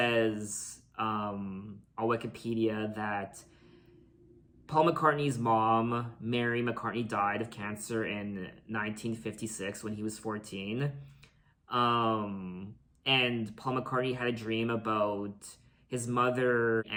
on Wikipedia that Paul McCartney's mom, Mary McCartney, died of cancer in 1956 when he was 14. And Paul McCartney had a dream about his mother,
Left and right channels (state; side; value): identical; both; correlation 1.00